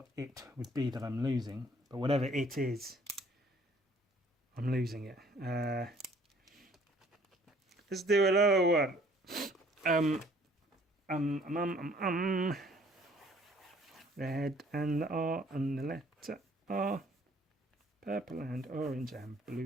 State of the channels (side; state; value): both; normal; correlation 0.58